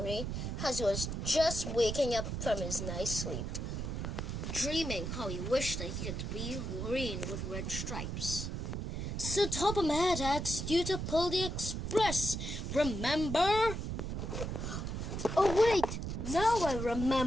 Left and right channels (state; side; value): noise; right; rumble, 4 dB below the sound